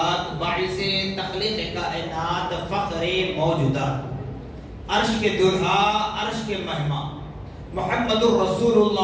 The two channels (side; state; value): both; identical; correlation 1.00